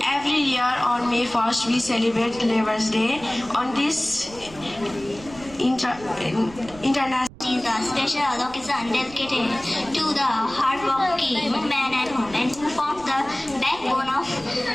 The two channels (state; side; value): noise; right; rumble, 20 dB below the sound